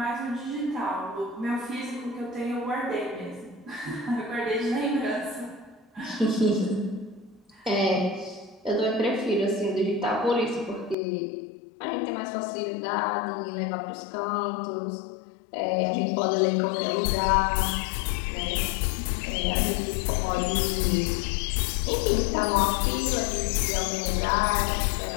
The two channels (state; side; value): drops out; right; at 11.0 s